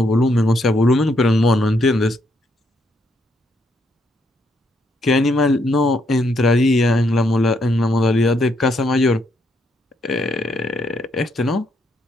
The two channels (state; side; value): normal; both; correlation 0.75